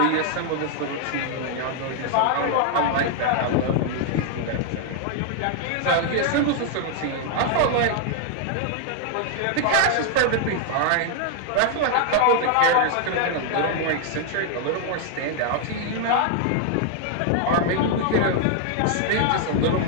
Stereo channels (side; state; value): both; different; correlation 0.00